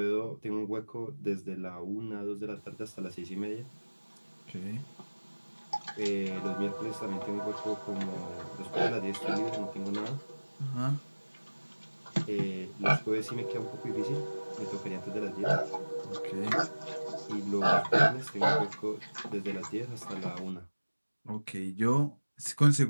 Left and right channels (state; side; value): inverted; both; correlation -1.00